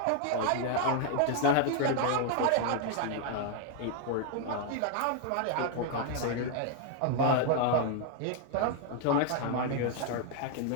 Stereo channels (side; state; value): both; different; correlation 0.00